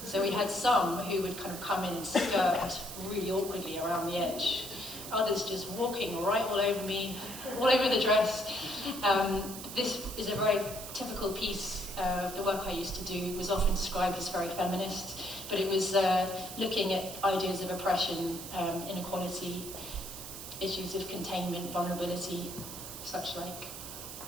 So we had some who would kind of come in and skirt really awkwardly around the edge. Others just walking right all over me, all over the dress. This is a very typical piece of the work I used to do. It was often described as very feminist, but it was looking at ideas of oppression, inequality, issues of containment, vulnerability, such like.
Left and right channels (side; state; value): right; noise; hiss, 10 dB below the sound